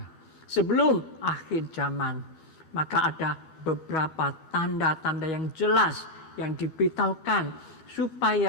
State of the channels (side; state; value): right; late; 13 ms